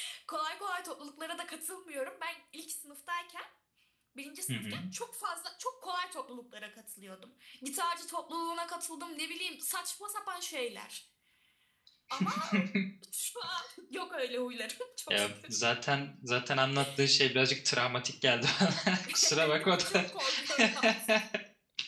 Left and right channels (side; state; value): both; identical; correlation 1.00